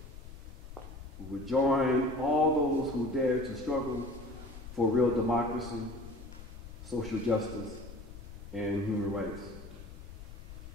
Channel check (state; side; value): noise; left; rumble, 13 dB below the sound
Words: We will join all those who dare to struggle for real democracy, social justice, and human rights.